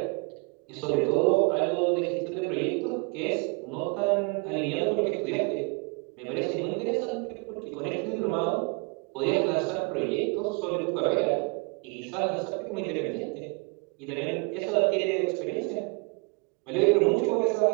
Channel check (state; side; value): quieter; left; 31.3 dB